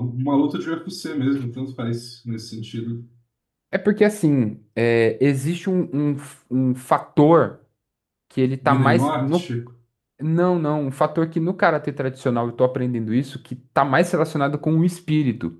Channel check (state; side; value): identical; both; correlation 1.00